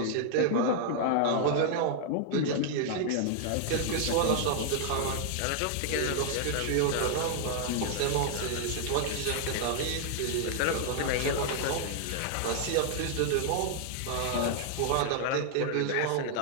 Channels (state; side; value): different; both; correlation 0.00